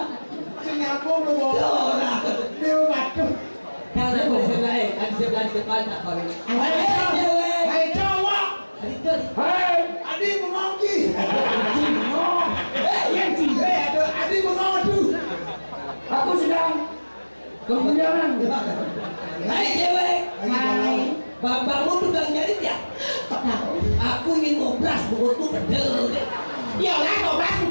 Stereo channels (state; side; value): inverted; both; correlation -1.00